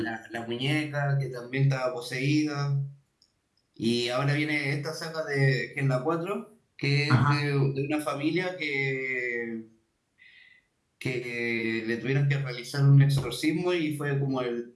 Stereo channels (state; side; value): identical; both; correlation 1.00